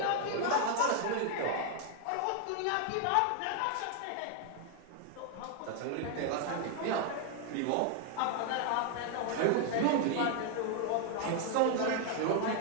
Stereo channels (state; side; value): different; both; correlation 0.00